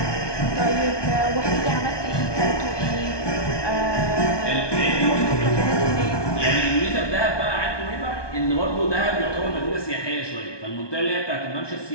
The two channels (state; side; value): late; right; 1.2 ms